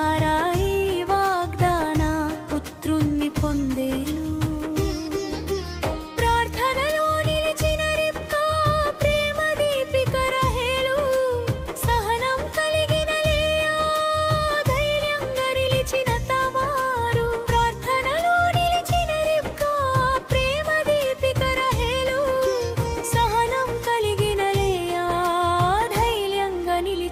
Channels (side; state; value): both; identical; correlation 1.00